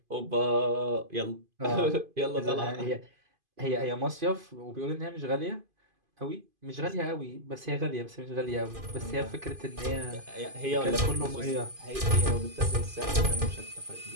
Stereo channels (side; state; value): left; late; 2.5 ms